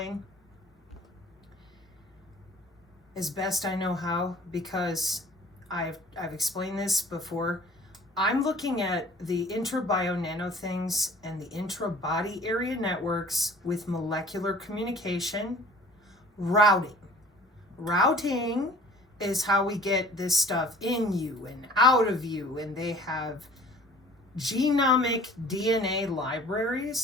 as best I know how, because I've explained this before. I'm looking at the intra-bio nano things and the intra-body area networks with molecular communication, routing. Routing is how we get this stuff in you and out of you, and they have genomic DNA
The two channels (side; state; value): both; normal; correlation 0.50